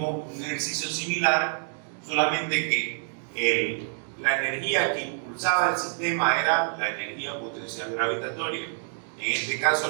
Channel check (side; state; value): left; silent; digital silence